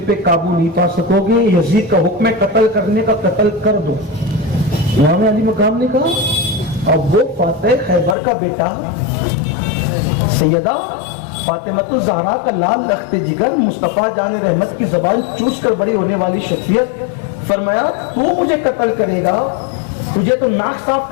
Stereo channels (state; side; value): drops out; right; at 8.2 s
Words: پہ قابو نہیں پا سکو گے. یزید کا حکم ہے قتل کرنے کا، قتل کر دو. امام علی مقام نے کہا اب وہ فاتح خیبر کا بیٹا سیدہ فاطمہ الزہرا کا لال رخت جگر، مصطفیٰ جان رحمت کی زبان چوس کر بڑی ہونے والی شخصیت، فرمایا تو مجھے قتل کرے گا، تجھے تو ناک صاف